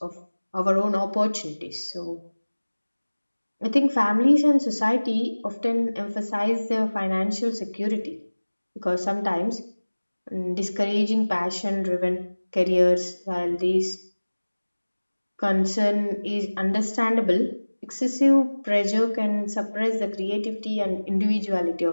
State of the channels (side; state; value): both; inverted; correlation -1.00